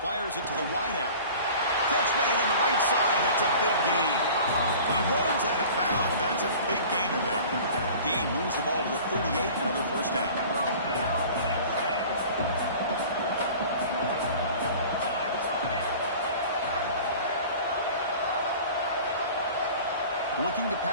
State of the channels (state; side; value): inverted; both; correlation -0.43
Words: Fires it to the wideout. Catch made on the right side. That's a big gain. He runs out of bounds. That's a big gainer there. Gain moves the ball to the 38. Another first down. Looking to